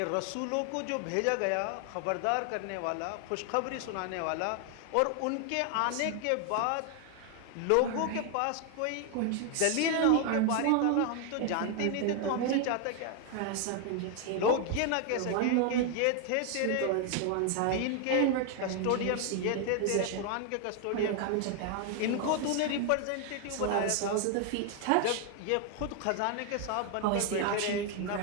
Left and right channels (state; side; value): different; both; correlation 0.00